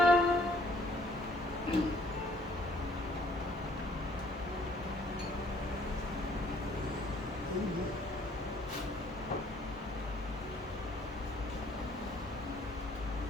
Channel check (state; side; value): normal; both; correlation 0.61